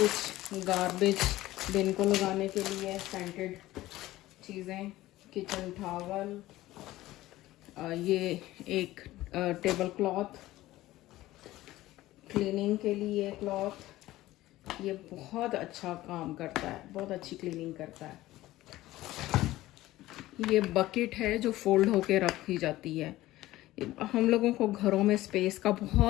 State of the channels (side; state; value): right; quieter; 16.5 dB